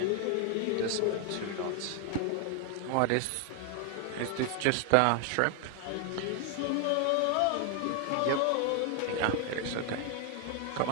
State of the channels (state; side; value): different; both; correlation 0.00